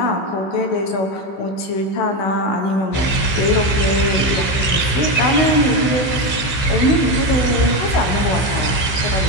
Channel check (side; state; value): right; late; 15 ms